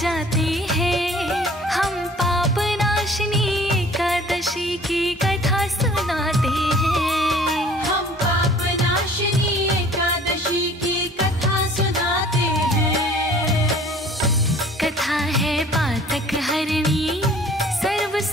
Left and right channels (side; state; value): both; normal; correlation 0.51